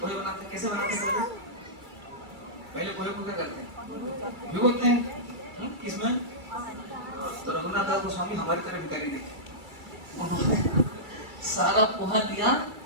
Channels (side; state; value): left; late; 2.3 ms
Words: पोहे बनाते कैसे बनाते हैं, पहले पोहे को क्या करते हैं, भिगोते हैं किसमें, तो रघुनाथ दास गोस्वामी हमारी तरफ करी नहीं, उन्होंने सारा पोहा दिया